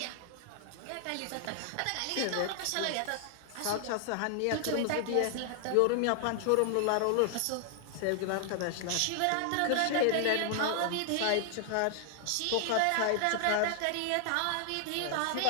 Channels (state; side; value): different; both; correlation 0.00